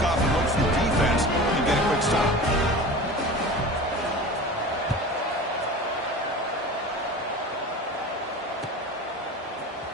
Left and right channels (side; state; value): both; normal; correlation 0.34